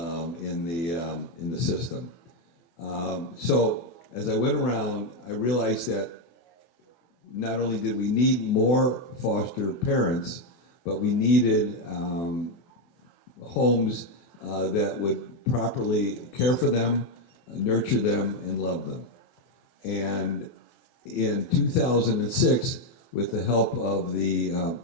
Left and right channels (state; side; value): late; right; 24 ms